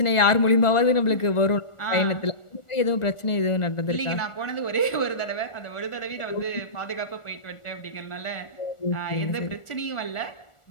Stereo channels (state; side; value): late; right; 1.4 ms